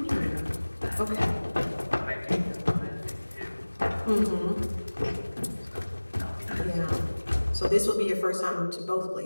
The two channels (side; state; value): both; inverted; correlation -1.00